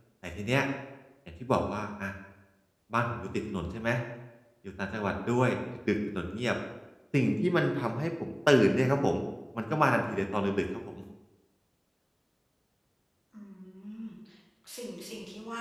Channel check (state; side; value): identical; both; correlation 1.00